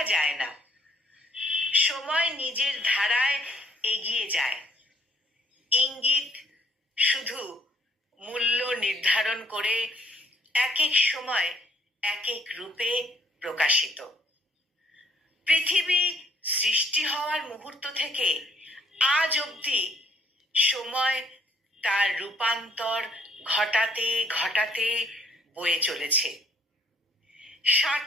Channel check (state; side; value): normal; both; correlation 0.64